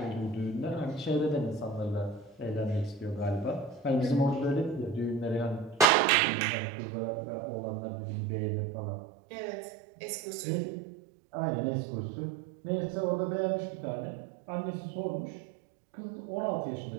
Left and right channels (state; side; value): drops out; left; at 5.9 s